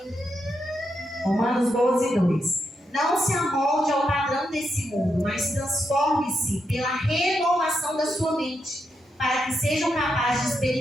Romanos 12, 2. Não se amolde ao padrão desse mundo, mas transforme-se pela renovação da sua mente, para que sejam capazes de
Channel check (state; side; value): normal; both; correlation 0.83